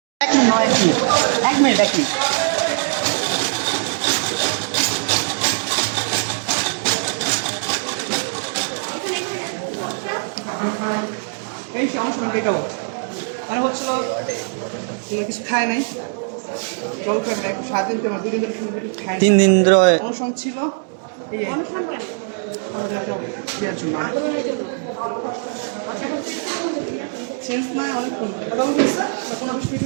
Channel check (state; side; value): silent; left; digital silence